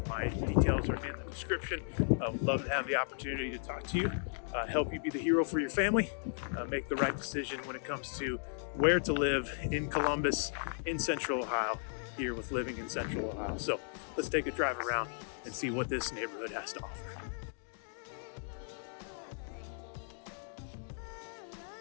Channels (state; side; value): silent; right; digital silence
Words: My details are in the description. I'd love to have the opportunity to talk to you, help you be the hero for your family, make the right decision when it comes to where to live in Columbus, in Central Ohio, here with Living in Central Ohio. So let's take a drive around and see what this neighborhood has to offer.